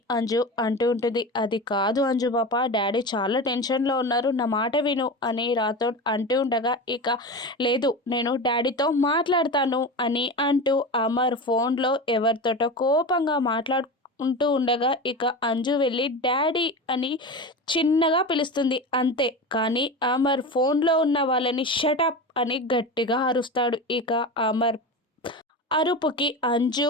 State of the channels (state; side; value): normal; both; correlation 0.26